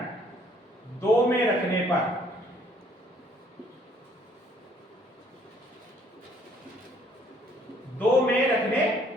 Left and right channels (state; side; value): normal; both; correlation 0.62